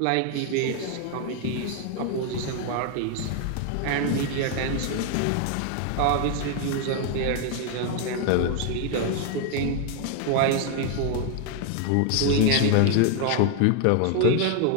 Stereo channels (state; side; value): different; both; correlation 0.01